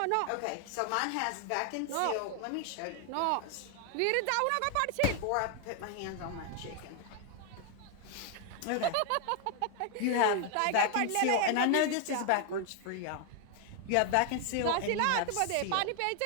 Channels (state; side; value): different; both; correlation 0.00